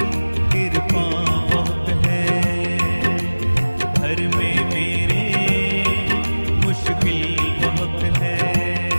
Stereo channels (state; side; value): inverted; both; correlation -1.00